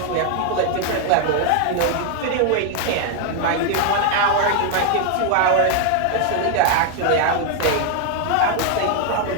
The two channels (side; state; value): both; different; correlation 0.00